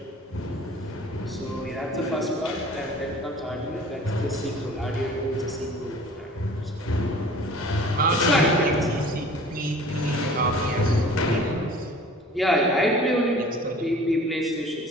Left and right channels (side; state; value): both; normal; correlation 0.47